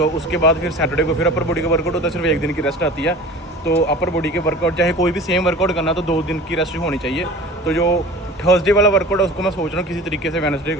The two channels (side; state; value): both; normal; correlation 0.39